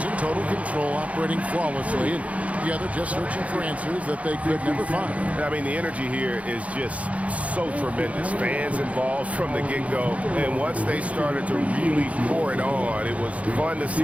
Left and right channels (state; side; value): late; left; 0.066 ms